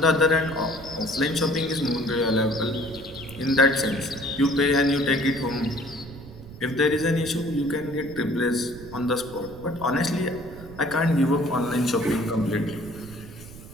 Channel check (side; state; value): right; noise; rumble, 16 dB below the sound